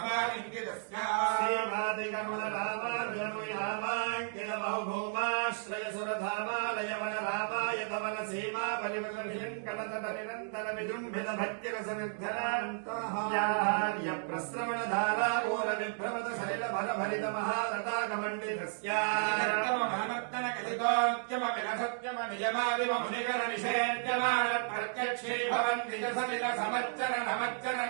श्रीमादिकमलरामार्जमुयामाङ्किल बहुभूमाश्रय सुरधामालय वनरामाय तवन सीमा परिवृतभिलङ्कलतट निरन्तर विजृम्भित भक्तिरसनिर्धरान्तः प्रस्रवणधारा मूल विभ्रमत सलिल भरभरित महारताकमण्डितस्य महमत्तन कथितोद्यम विरसत्यम निजमादिम मुनिकर निषेद्यमान प्रत्यक्षे भवन् निज सलिल समच्चर नमच्चर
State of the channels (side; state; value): left; silent; digital silence